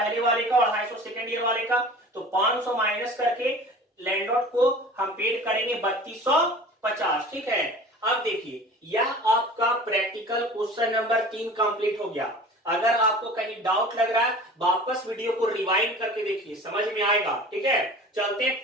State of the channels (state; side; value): normal; both; correlation 0.41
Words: वाले का और 250 सेकेंड ईयर वाले का, तो 500 माइनस करके लैंडलॉर्ड को हम पेड करेंगे 3250, ठीक है। अब देखिए, यह आपका प्रैक्टिकल क्वेश्चन नंबर 3 कंप्लीट हो गया। अगर आपको कहीं डाउट लग रहा है, वापस वीडियो को रिवाइंड करके देखिए, समझ में आएगा, ठीक है। चलते हैं